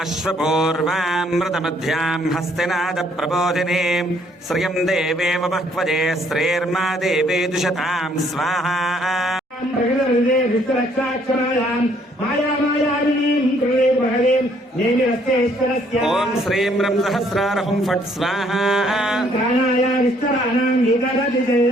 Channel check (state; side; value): normal; both; correlation 0.65